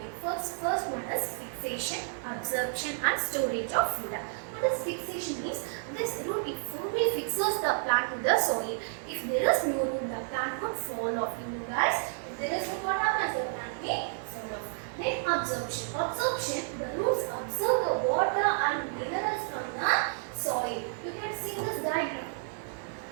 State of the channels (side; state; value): left; silent; digital silence